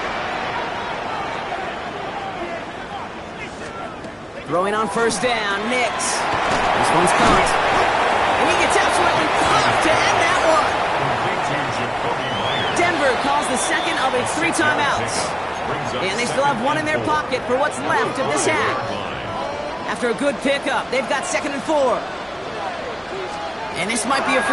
Throwing on 1st down, Nix. This one's caught. And he gets absolutely pumped to end that one. Denver calls the 2nd of its 3 timeouts. And they still have 1 in their pocket for what's left of this half. After a good pickup, they've got 2nd and 4. And this might be a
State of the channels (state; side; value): identical; both; correlation 1.00